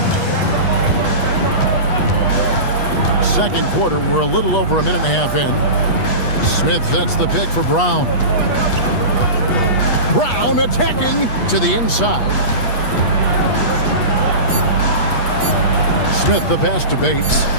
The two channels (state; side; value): late; right; 8.3 ms